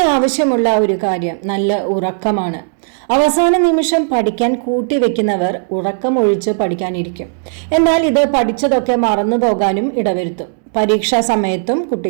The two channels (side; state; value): left; silent; digital silence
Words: ആവശ്യമുള്ള ഒരു കാര്യം നല്ല ഉറക്കമാണ്. അവസാന നിമിഷം പഠിക്കാൻ കൂട്ടിവെക്കുന്നവർ ഉറക്കമൊഴിച്ച് പഠിക്കാനിരിക്കും. എന്നാൽ ഇത് പഠിച്ചതൊക്കെ മറന്നു പോകാനും ഇടവരുത്തും. പരീക്ഷാ സമയത്തും